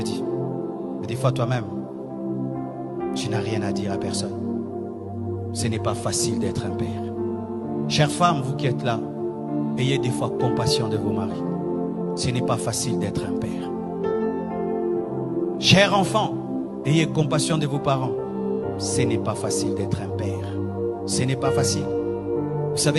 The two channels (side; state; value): both; identical; correlation 1.00